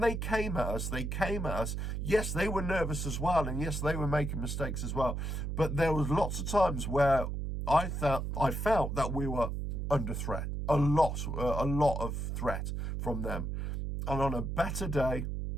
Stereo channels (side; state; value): right; noise; hum, 3 dB below the sound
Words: they came at us, yes, they were nervous as well, and yes, they were making mistakes as well. But there was lots of times where I felt that we were under threat. A lot of threat from them. And on a better day,